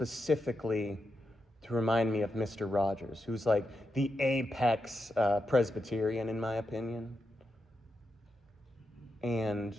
to remind me of Mr. Rogers, who's like the apex Presbyterian, in my opinion. And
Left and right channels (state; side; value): normal; both; correlation 0.86